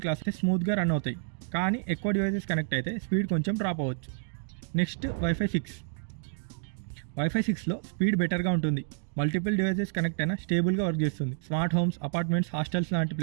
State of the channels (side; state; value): left; silent; digital silence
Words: క్లాసెస్ స్మూత్గా రన్ అవుతాయి. కానీ ఎక్కువ డివైసెస్ కనెక్ట్ అయితే స్పీడ్ కొంచెం డ్రాప్ అవ్వచ్చు. నెక్స్ట్ వైఫై 6లో స్పీడ్ బెటర్గా ఉంటుంది. మల్టిపుల్ డివైసెస్ కనెక్ట్ అయినా స్టేబుల్గా వర్క్ చేస్తుంది. స్మార్ట్ హోమ్స్, అపార్ట్మెంట్స్, హాస్టల్స్ లాంటి